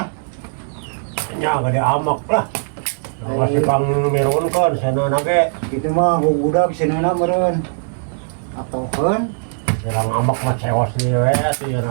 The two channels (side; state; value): left; silent; 61 dB below the other